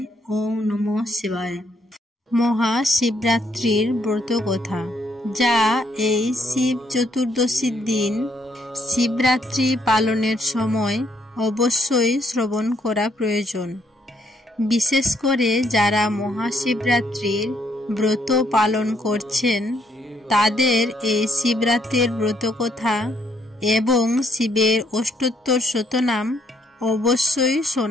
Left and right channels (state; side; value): normal; both; correlation 0.71